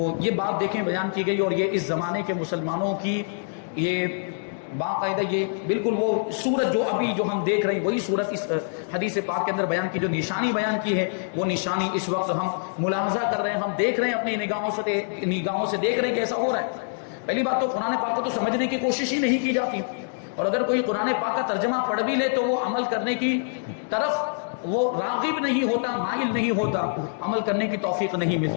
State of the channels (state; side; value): silent; right; digital silence